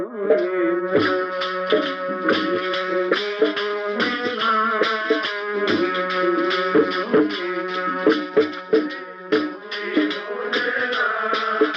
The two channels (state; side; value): identical; both; correlation 1.00